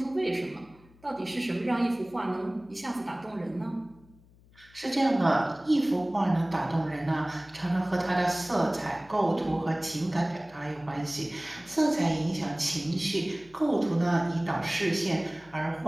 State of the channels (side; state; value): left; noise; hum, 27 dB below the sound